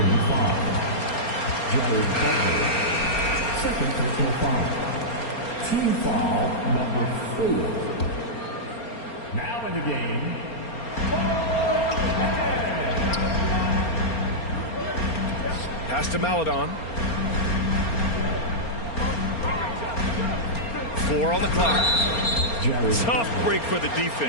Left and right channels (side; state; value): right; late; 4.3 ms